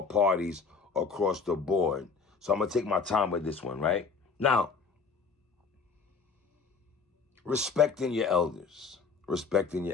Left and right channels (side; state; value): right; quieter; 5.1 dB